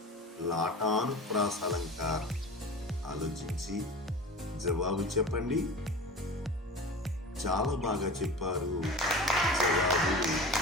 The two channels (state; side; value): normal; both; correlation 0.35